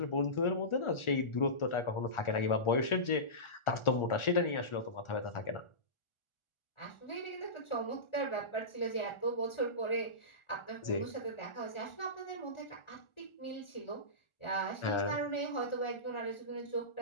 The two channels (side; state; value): right; late; 1.4 ms